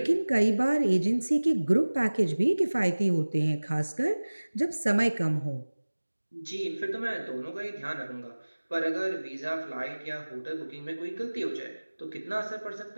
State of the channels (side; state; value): both; inverted; correlation -1.00